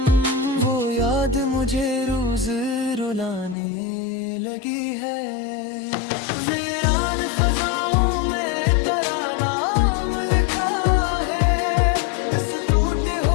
वो याद मुझे रोज रुलाने लगी है। वीरान फजाओं में तेरा नाम लिखा है, इस टूटे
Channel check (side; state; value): right; drops out; at 3.6 s